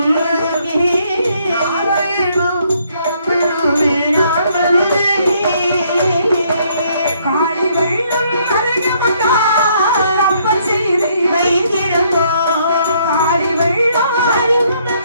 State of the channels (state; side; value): inverted; both; correlation -0.68